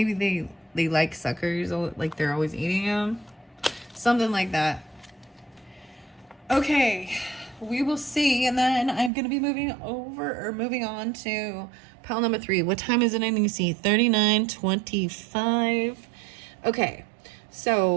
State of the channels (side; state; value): left; drops out; at 9.1 s